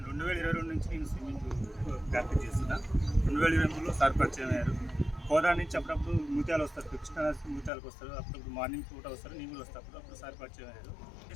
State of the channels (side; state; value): right; drops out; at 7.7 s